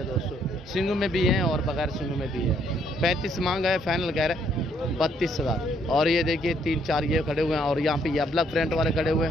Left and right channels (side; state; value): both; normal; correlation 0.69